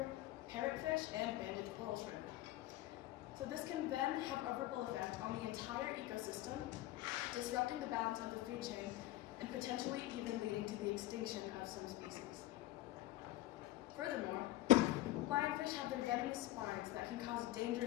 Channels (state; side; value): quieter; right; 15.6 dB